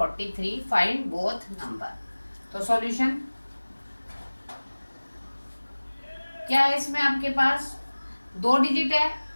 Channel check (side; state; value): both; inverted; correlation -1.00